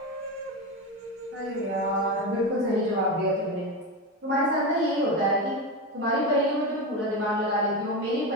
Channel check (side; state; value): both; normal; correlation 0.18